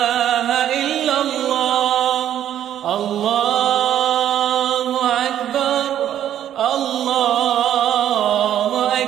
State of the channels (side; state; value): left; quieter; 10.9 dB